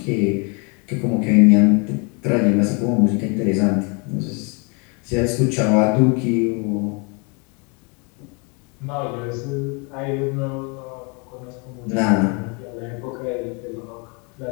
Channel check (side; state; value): right; quieter; 33.3 dB